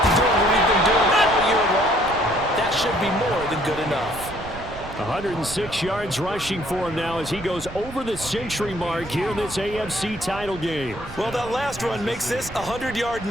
doing what we've been doing all year long. That should be more than good enough. 106 yards rushing for him now as he goes over the century mark here in this AFC title game. Well, that last run makes this a 100-yard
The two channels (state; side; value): noise; right; rumble, 14 dB below the sound